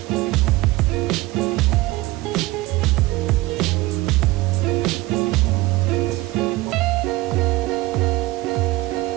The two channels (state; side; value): quieter; left; 19.9 dB